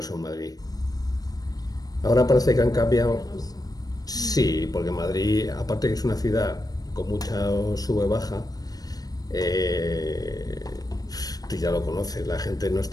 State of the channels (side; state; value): right; late; 0.18 ms